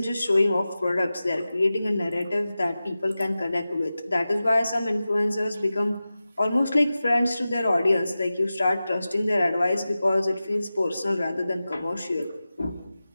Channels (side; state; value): both; inverted; correlation -0.95